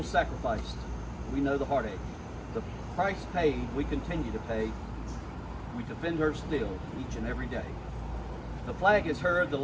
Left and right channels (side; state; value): both; identical; correlation 1.00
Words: sacrificed, we know the heartache. The price paid, we continue to pay. We defend her still, each and every day. The flag has heard the